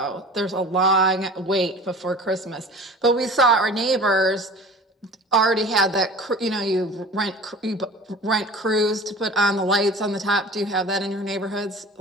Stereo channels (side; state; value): both; normal; correlation 0.41